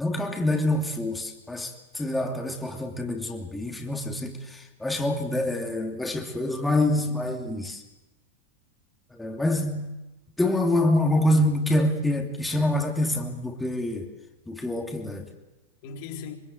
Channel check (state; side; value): normal; both; correlation 0.71